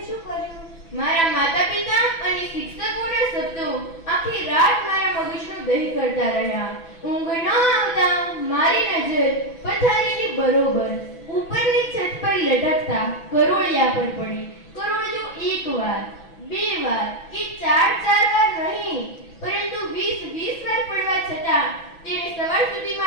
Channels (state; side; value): late; right; 6.0 ms